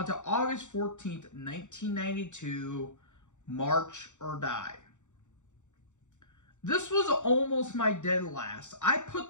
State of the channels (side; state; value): right; late; 0.85 ms